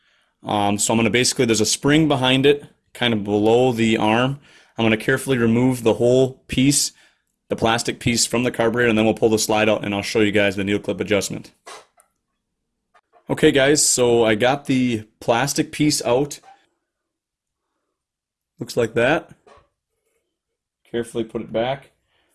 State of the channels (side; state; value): both; identical; correlation 1.00